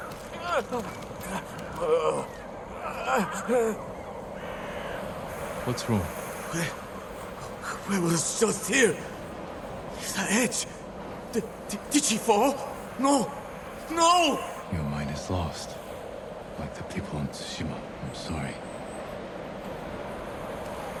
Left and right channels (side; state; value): both; identical; correlation 1.00